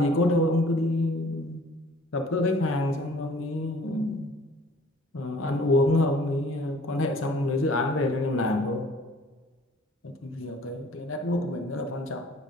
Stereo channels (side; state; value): both; normal; correlation 0.53